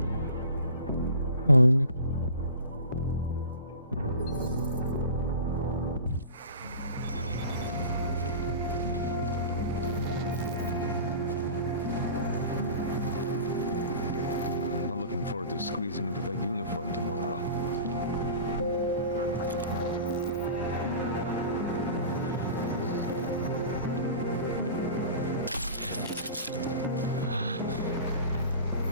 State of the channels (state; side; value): inverted; both; correlation -0.39